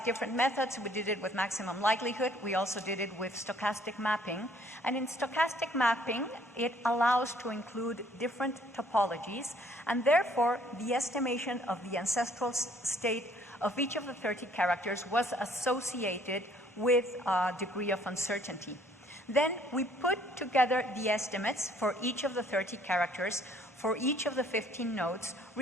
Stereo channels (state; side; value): normal; both; correlation 0.61